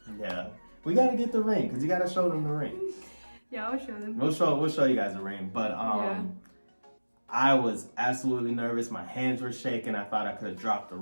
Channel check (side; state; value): both; inverted; correlation -1.00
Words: Yeah. We got to get the ring because you got to show them the ring. Yeah, I'll show them. We'll show you guys the ring. But I was absolutely nervous. My hands were shaking. I thought I could have dropped the